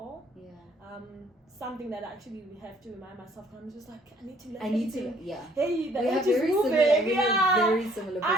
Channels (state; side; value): normal; both; correlation 0.61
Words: Something that actually we have to remind myself. I'm just like, I need to learn. Hey, the edge is moving. Very similar.